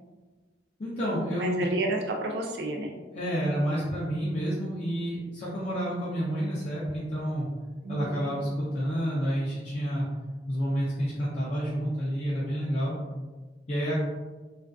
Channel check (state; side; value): normal; both; correlation 0.76